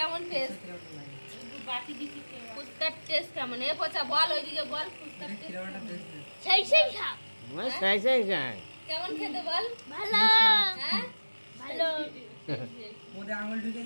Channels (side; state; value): both; inverted; correlation -1.00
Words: টেস্ট? ফুচকার টেস্ট কেমন? এ পচা বল, ওইদিকে বল ফুচকার টেস্ট সেই সেই খা। কেমন খেতে বল? ভালো। হ্যাঁ ভালো। ওদের আঙুল ঢুকে